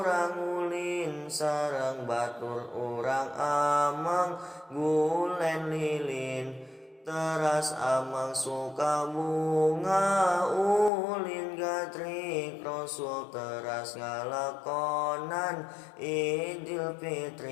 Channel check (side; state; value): right; drops out; at 10.9 s